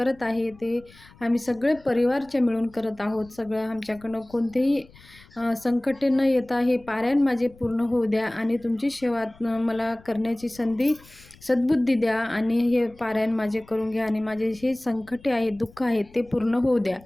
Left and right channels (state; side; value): noise; left; rumble, 25 dB below the sound